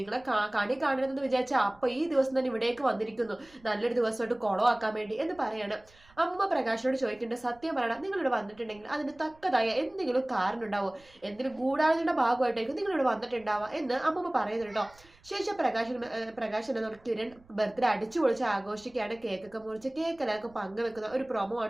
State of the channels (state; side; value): noise; right; rumble, 27 dB below the sound